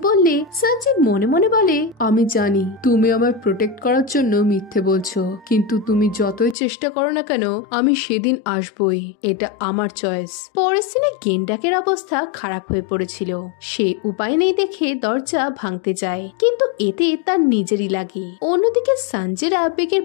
বললে সঞ্জয় মনে মনে বলে আমি জানি তুমি আমায় প্রোটেক্ট করার জন্য মিথ্যে বলছো, কিন্তু তুমি যতই চেষ্টা করো না কেন আমি সেদিন আসবই, এটা আমার চয়েস। পরের দিনে গেন্ডাকের অবস্থা খারাপ হয়ে পড়েছিল। সে উপায় নেই দেখে দরজা ভাঙতে যায়, কিন্তু এতে তার নিজেরই লাগে। অন্যদিকে সঞ্জেরা বেকের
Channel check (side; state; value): right; drops out; at 6.6 s